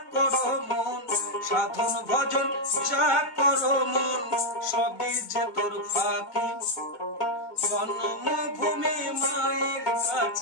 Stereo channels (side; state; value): right; late; 1.2 ms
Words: করো মন, সাধন ভজন যা করো মন, সবই যে তোর ফাঁকি। জন্মভূমি মায়ের